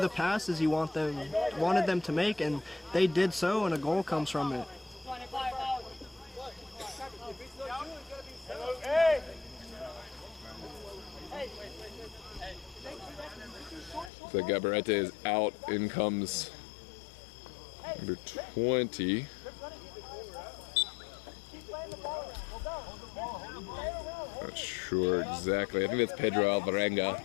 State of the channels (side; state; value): right; drops out; at 14.1 s